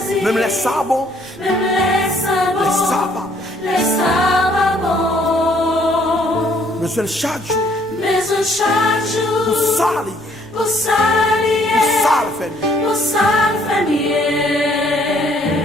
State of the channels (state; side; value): noise; right; rumble, 26 dB below the sound